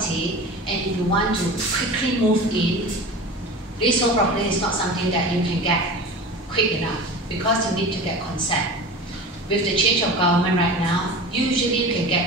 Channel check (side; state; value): both; normal; correlation 0.34